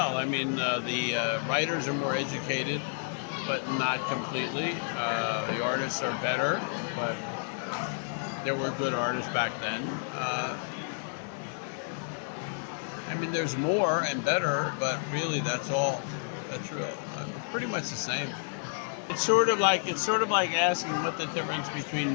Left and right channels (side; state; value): right; silent; digital silence